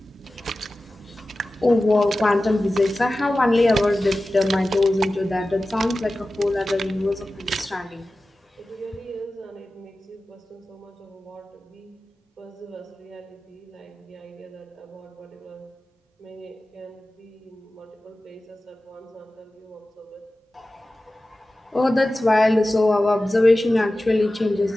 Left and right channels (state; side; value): normal; both; correlation 0.95